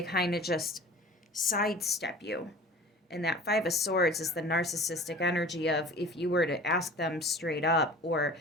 kind of just sidestep you. And that Five of Swords is the narcissistic energy of if you were to ask them straight up or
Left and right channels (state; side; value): normal; both; correlation 0.42